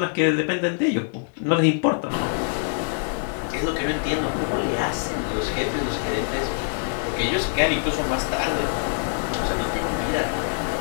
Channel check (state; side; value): silent; right; 62 dB below the other